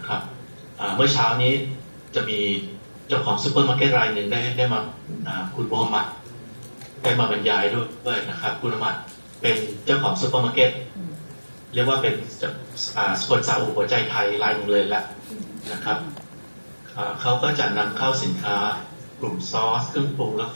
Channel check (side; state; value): both; inverted; correlation -1.00